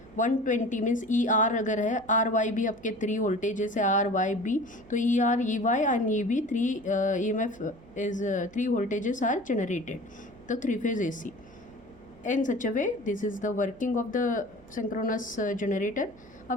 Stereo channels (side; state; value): right; noise; hum, 25 dB below the sound